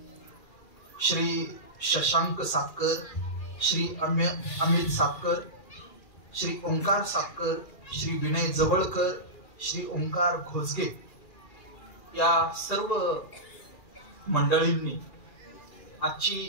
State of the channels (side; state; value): right; late; 2.4 ms